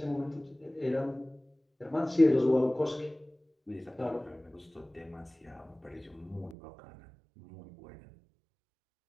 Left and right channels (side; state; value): left; drops out; at 6.6 s